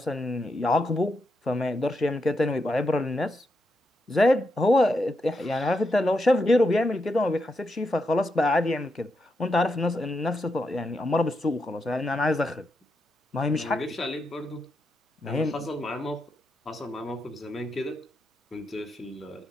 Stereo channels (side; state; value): both; normal; correlation 0.84